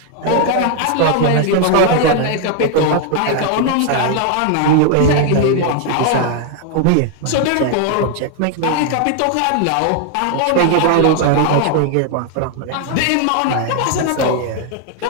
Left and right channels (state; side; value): different; both; correlation 0.00